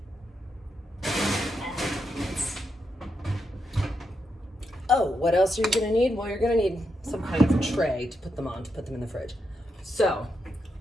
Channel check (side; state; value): both; normal; correlation 0.83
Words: Oh, what else are you gonna need? Well, you're gonna need some kind of tray to put them on, to put them in the fridge. So,